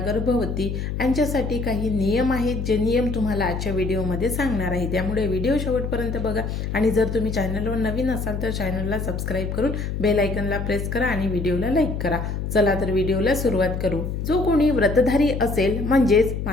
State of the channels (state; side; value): noise; left; hum, 3 dB below the sound